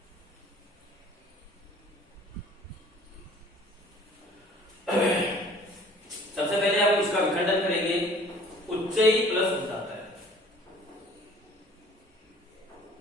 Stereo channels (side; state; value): both; normal; correlation 0.51